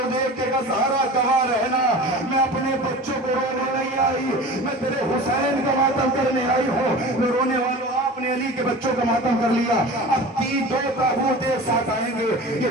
دیکھ کے کہا زہرا گواہ رہنا، میں اپنے بچوں کو رونے نہیں آئی، میں تیرے حسین کا ماتم کرنے آئی ہوں۔ میں رونے والوں آپ نے علی کے بچوں کا ماتم کر لیا، اب 2 تابوت ایک ساتھ آئیں گے۔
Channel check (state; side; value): normal; both; correlation 0.36